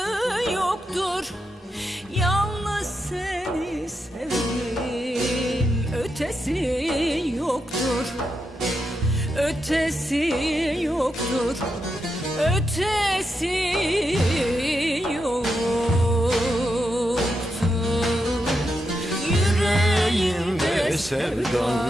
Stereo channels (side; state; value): both; normal; correlation 0.85